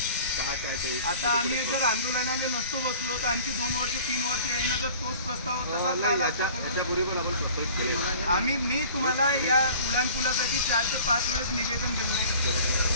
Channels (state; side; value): inverted; both; correlation -0.45